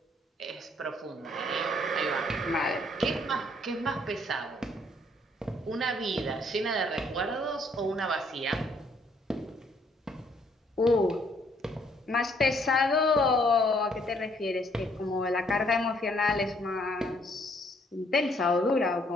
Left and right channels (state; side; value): normal; both; correlation 0.67